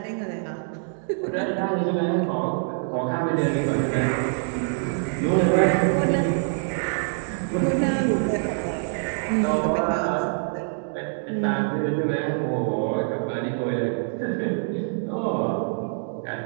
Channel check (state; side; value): silent; left; digital silence